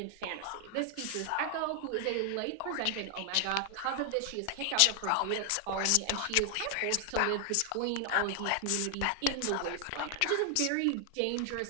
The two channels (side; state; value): both; different; correlation 0.00